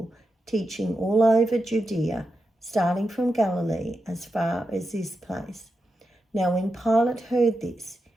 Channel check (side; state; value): both; normal; correlation 0.88